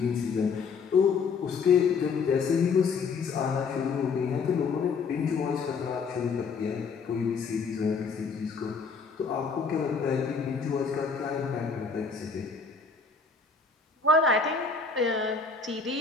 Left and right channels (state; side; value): quieter; right; 5.1 dB